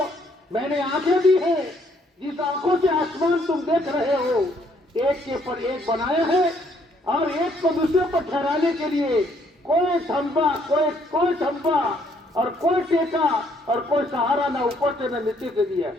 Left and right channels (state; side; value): normal; both; correlation 0.67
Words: میں نے آنکھیں دی ہیں، جس آنکھوں سے آسمان تم دیکھ رہے ہو ایک کے پر ایک بنایا ہے، اور ایک کو دوسرے پر ٹھہرانے کے لیے کوئی تھمبا، کوئی تھمبا اور کوئی ٹیکا اور کوئی سہارا نہ اوپر سے نہ نیچے سے دیا.